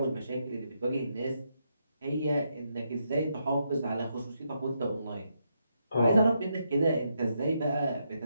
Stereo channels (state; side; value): inverted; both; correlation -0.80